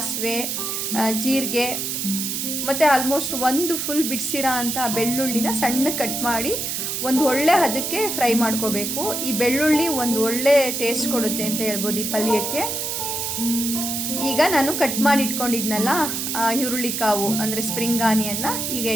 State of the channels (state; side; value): noise; right; hiss, 2 dB below the sound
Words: ಜೀರಿಗೆ ಮತ್ತು ಆಲ್ಮೋಸ್ಟ್ ಒಂದು ಫುಲ್ ಬಿಡಿಸಿರೋ ಅಂಥ ಬೆಳ್ಳುಳ್ಳಿನ ಸಣ್ಣ ಕಟ್ ಮಾಡಿ ಒಂದು ಒಳ್ಳೆ ಹದಕ್ಕೆ ಫ್ರೈ ಮಾಡ್ಕೋಬೇಕು. ಈ ಬೆಳ್ಳುಳ್ಳಿ ಒಂದು ಒಳ್ಳೆ ಟೇಸ್ಟ್ ಕೊಡುತ್ತೆ ಅಂತ ಹೇಳ್ಬೋದು ಈ ಪಲ್ಯಕ್ಕೆ. ಈಗ ನಾನು ಕಟ್ ಮಾಡಿ ಇಟ್ಕೊಂಡಿದ್ನಲ್ಲ ಈರುಳ್ಳಿ ಕಾವು ಅಂದರೆ ಸ್ಪ್ರಿಂಗ್ ಆನಿಯನ್ನ ಈಗ